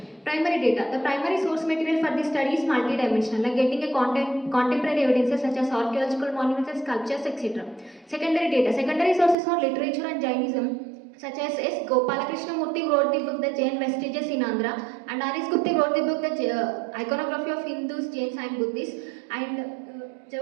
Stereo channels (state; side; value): drops out; left; at 9.3 s